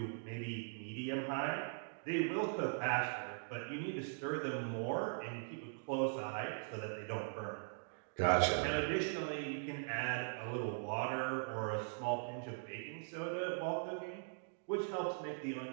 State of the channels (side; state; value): left; silent; digital silence